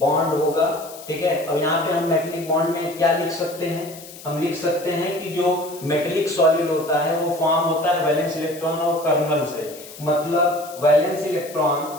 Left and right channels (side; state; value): left; noise; hiss, 17 dB below the sound